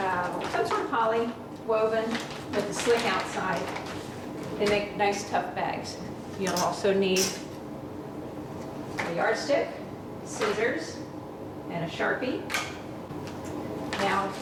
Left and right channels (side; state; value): both; identical; correlation 1.00